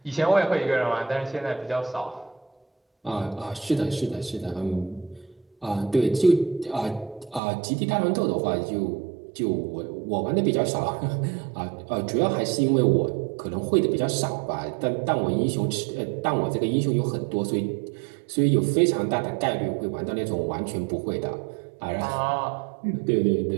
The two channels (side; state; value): left; drops out; at 7.4 s